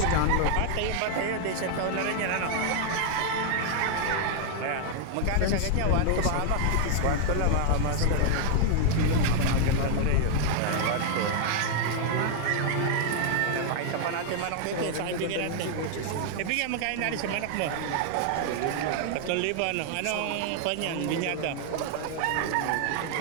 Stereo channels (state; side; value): different; both; correlation 0.00